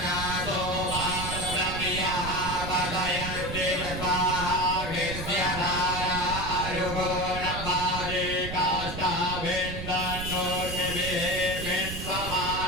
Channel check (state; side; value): noise; right; rumble, 7 dB below the sound